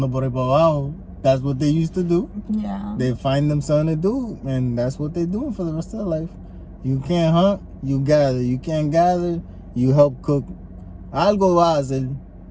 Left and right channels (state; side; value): identical; both; correlation 1.00